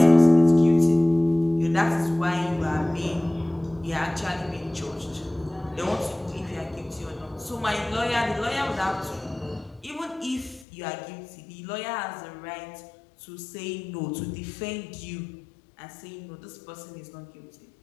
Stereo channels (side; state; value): right; drops out; at 10.7 s